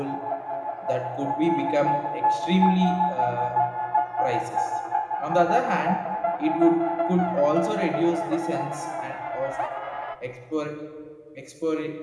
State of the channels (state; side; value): identical; both; correlation 1.00